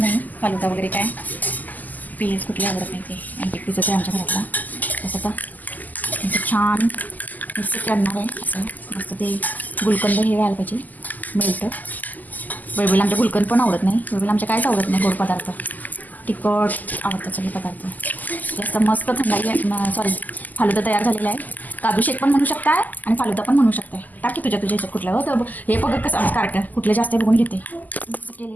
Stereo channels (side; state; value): right; late; 0.082 ms